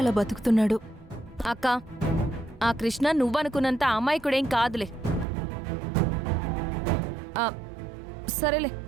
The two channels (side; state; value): left; drops out; at 5.2 s